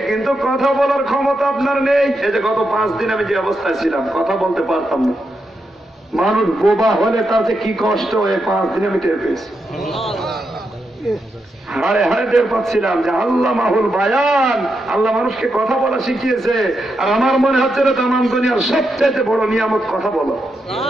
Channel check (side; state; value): both; normal; correlation 0.84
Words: কিন্তু কথা বলার ক্ষমতা আপনার নেই। এই যে গত 5 দিন আমি যে অবস্থায় ছিলাম, কথা বলতে পারতাম না। মানুষ বোবা হলে তার যে কি কষ্ট, এই 5 দিন আমি টের পেয়েছি। হাড়ে হাড়ে টের পাচ্ছিলাম যে আল্লাহ মাহুল বায়ান, আল্লাহ মানুষকে কথা বলা শিখিয়েছে। আর আমার মনে হচ্ছে না তামাম দুনিয়ার সবচেয়ে বড় নিয়ামত কথা বলো।